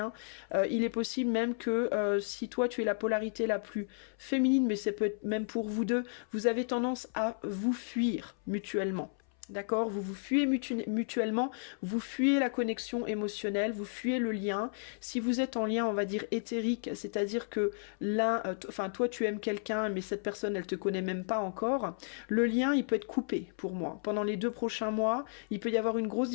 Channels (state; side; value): silent; right; 56 dB below the other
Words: Il est possible même que si toi, tu es la polarité la plus féminine, mais ça peut être même pour vous deux, vous avez tendance à vous fuir mutuellement. D'accord? Vous vous fuyez mutuellement, vous fuyez la connexion émotionnelle, vous fuyez le lien. Si vous êtes en lien, on va dire éthérique, c'est-à-dire que l'un, enfin toi tu aimes quelqu'un, mais cette personne elle te connaît même pas encore, le lien il peut être coupé pour moi. Pendant les 2 prochains mois, il peut y avoir une grosse